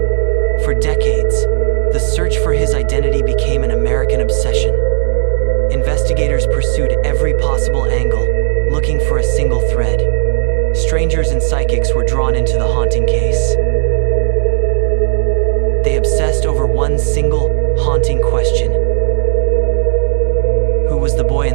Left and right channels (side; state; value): left; silent; 65 dB below the other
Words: For decades, the search for his identity became an American obsession. Investigators pursued every possible angle, looking for a single thread. Strangers and psychics were drawn into the haunting case. They obsessed over one single, haunting question. Who was the boy in